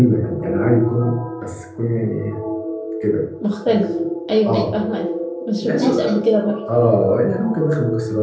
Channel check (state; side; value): identical; both; correlation 1.00